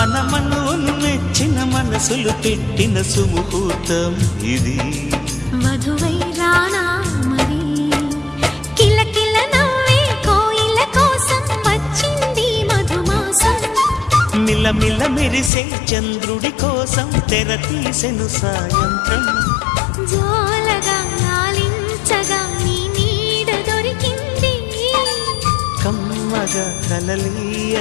మెచ్చిన మనసులు పెట్టిన సుముహూర్తం ఇది మధువై రానా మరి కిలకిల నవ్వే కోయిల కోసం వచ్చింది మధుమాసం మిలమిల మెరిసే చంద్రుడి కోసం తెర తీసెను సాయంత్రం జోలగా లాలించగా నీ నీడ దొరికింది కమ్మగా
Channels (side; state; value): right; drops out; at 15.5 s